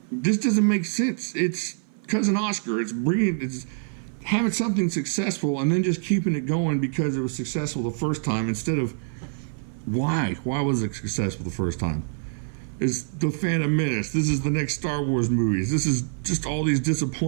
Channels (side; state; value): left; silent; 59 dB below the other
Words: doesn't make sense. It's Cousin Oscar. It's having something successful and then just keeping it going because it was successful the first time instead of why was it successful the first time? Is the Phantom Menace. This is the next Star Wars movies. This is just all these